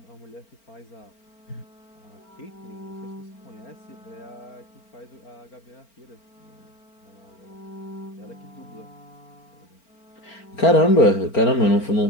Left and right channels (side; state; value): right; late; 4.4 ms